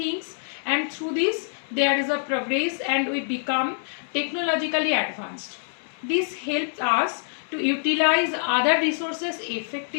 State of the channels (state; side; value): silent; right; 61 dB below the other